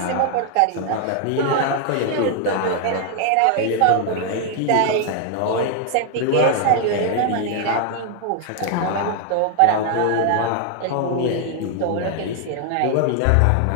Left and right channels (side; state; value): both; different; correlation 0.00